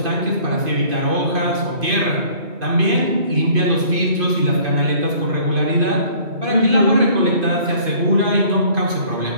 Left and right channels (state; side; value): late; left; 2.5 ms